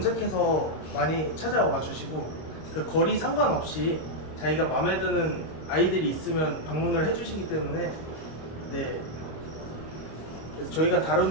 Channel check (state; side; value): late; right; 26 ms